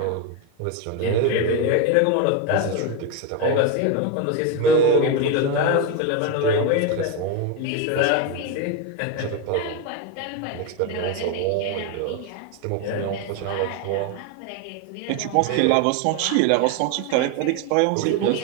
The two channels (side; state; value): both; different; correlation 0.02